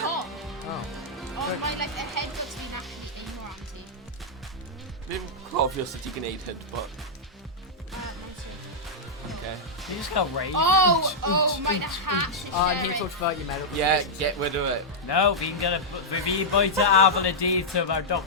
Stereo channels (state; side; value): normal; both; correlation -0.08